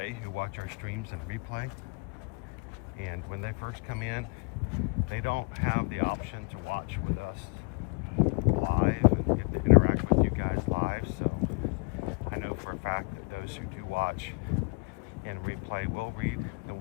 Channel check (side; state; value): right; quieter; 32.8 dB